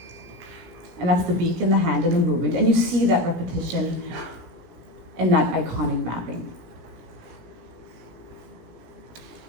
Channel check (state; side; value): late; left; 17 ms